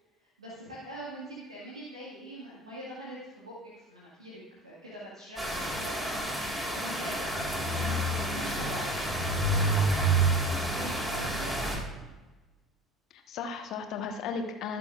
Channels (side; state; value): both; normal; correlation 0.35